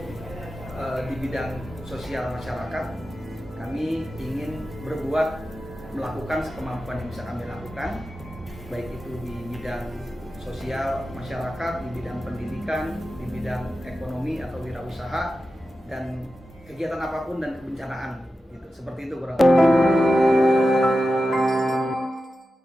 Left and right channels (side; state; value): both; normal; correlation 0.92